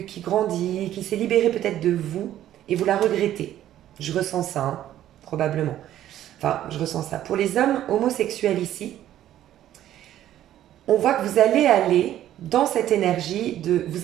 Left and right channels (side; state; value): left; quieter; 12.3 dB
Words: qui grandit, qui s'est libérée peut-être de vous et vous la regrettez. Je ressens ça, hein, probablement. Enfin, je ressens ça. Pour les hommes homosexuels ici, on voit que vous allez aller dans cette énergie de...